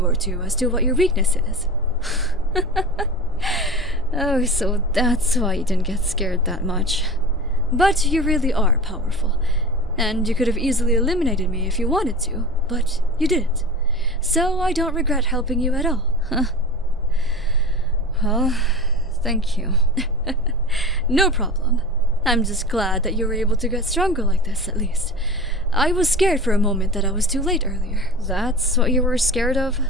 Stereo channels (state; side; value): normal; both; correlation 0.32